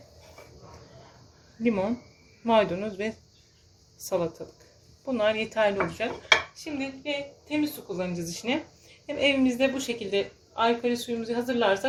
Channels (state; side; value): identical; both; correlation 1.00